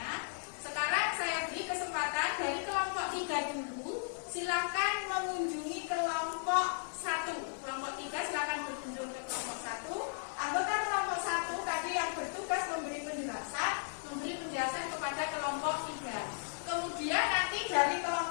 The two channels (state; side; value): silent; right; 54 dB below the other